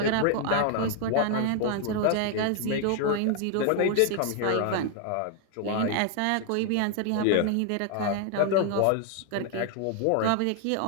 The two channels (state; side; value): different; both; correlation 0.00